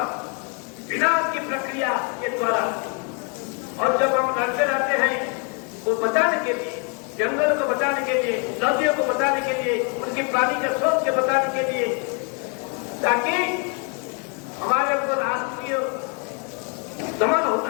विनाश की प्रक्रिया के द्वारा। और जब हम लड़ते रहते हैं वो बचाने के लिए, जंगल को बचाने के लिए, नदियों को बचाने के लिए, उनकी पानी के स्रोत के बचाने के लिए, ताकि हमारे ऊपर राष्ट्रीय दमन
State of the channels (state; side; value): quieter; right; 36.4 dB